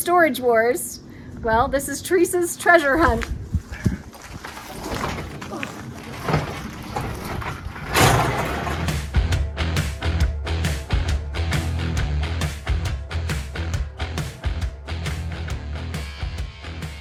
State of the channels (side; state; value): both; identical; correlation 1.00